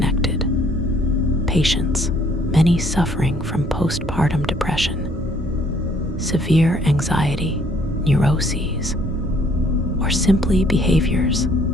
Patients, many suffering from postpartum depression, severe anxiety, neuroses, or simply behaviors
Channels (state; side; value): normal; both; correlation 0.63